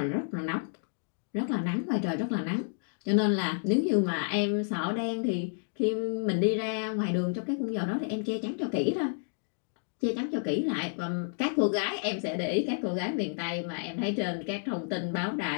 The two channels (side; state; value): right; silent; digital silence